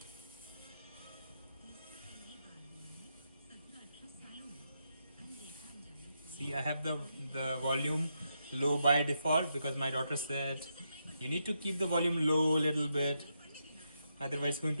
See, I have the volume low by default because my daughter said you need to keep the volume low a little bit, otherwise it's going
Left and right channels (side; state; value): both; inverted; correlation -0.83